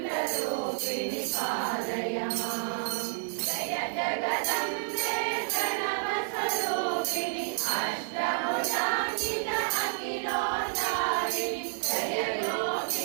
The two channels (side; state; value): left; silent; digital silence